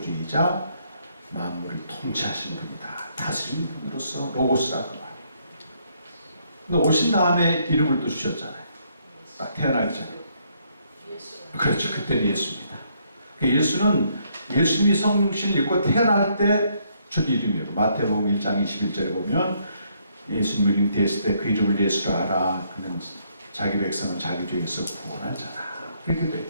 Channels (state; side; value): inverted; both; correlation -0.71